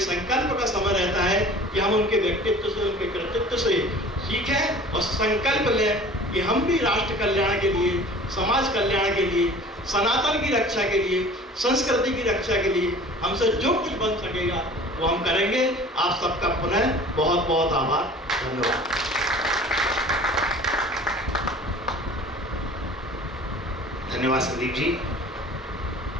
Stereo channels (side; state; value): both; normal; correlation 0.44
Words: का समय रहता है कि हम उनके व्यक्तित्व से, उनके कृतित्व से सीखें और संकल्प लें कि हम भी राष्ट्र कल्याण के लिए, समाज कल्याण के लिए, सनातन की रक्षा के लिए, संस्कृति की रक्षा के लिए हमसे जो कुछ बन सकेगा वो हम करेंगे। आप सबका पुनः बहुत बहुत आभार, धन्यवाद। धन्यवाद संदीप जी,